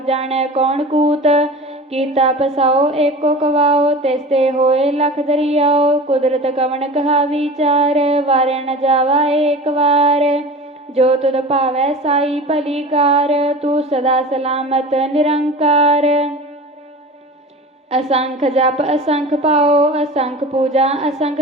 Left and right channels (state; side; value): normal; both; correlation 0.35